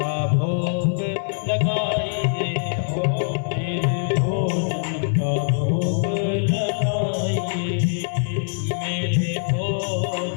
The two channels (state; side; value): silent; right; 63 dB below the other